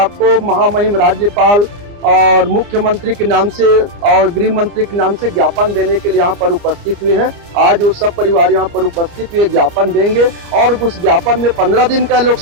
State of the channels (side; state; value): left; late; 29 ms